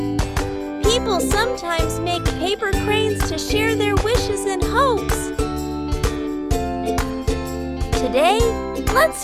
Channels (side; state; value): both; identical; correlation 1.00